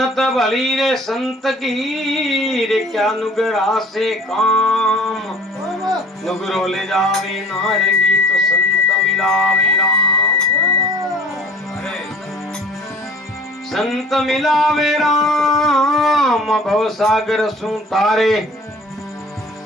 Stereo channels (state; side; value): normal; both; correlation 0.47